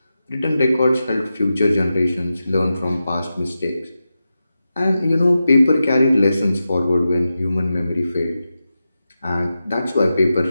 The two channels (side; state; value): both; inverted; correlation -0.91